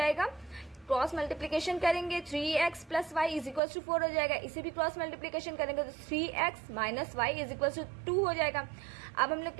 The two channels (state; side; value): drops out; left; at 3.6 s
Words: क्रॉस मल्टीप्लीकेशन करेंगे 3x plus y is equals to 4 हो जाएगा. इसे भी क्रॉस मल्टीप्लीकेशन करेंगे तो 3x minus y is equals to 2 हो जाएगा. अब हम लोग